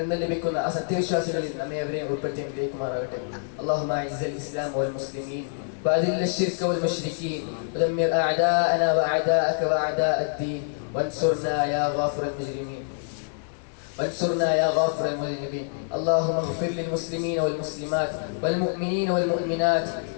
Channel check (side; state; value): right; silent; digital silence